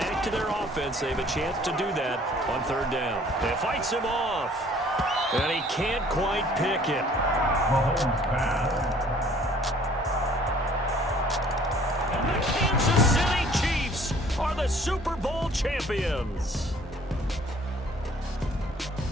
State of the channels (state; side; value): normal; both; correlation 0.55